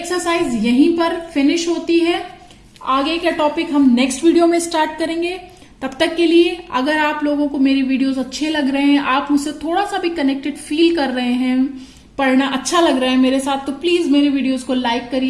यहीं पर फिनिश होती है। आगे का टॉपिक हम नेक्स्ट वीडियो में स्टार्ट करेंगे। तब तक के लिए अगर आप लोगों को मेरी वीडियोस अच्छे लग रहे हैं, आप मुझसे थोड़ा सा भी कनेक्टेड फील कर रहे हैं, पढ़ना अच्छा लग रहा है मेरे साथ, तो प्लीज मेरे वीडियोस को लाइक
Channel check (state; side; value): identical; both; correlation 1.00